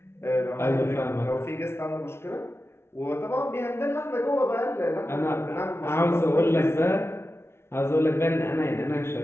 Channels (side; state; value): right; late; 0.12 ms